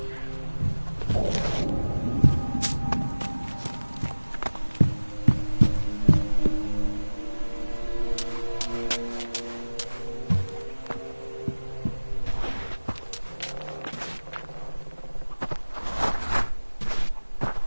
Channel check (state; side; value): inverted; both; correlation -1.00